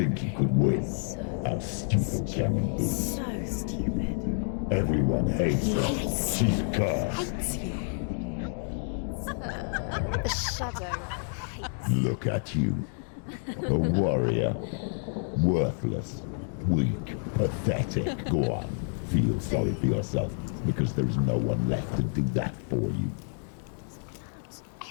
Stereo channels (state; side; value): silent; right; 59 dB below the other